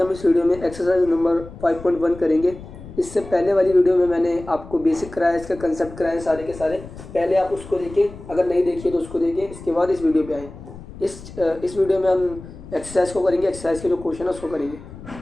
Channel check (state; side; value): noise; left; rumble, 16 dB below the sound